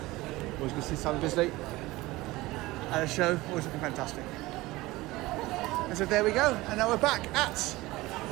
Always good to see Sam Bisley at a show, always looking fantastic. And so there we go, and now we're back at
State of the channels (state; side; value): quieter; left; 19.6 dB